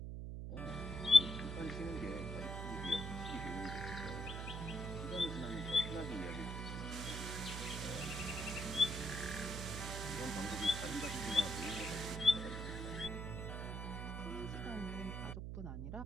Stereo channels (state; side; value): noise; right; hum, 5 dB below the sound